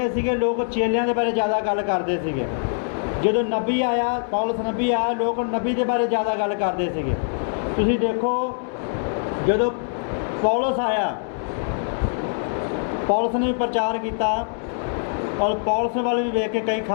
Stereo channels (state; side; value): silent; right; 63 dB below the other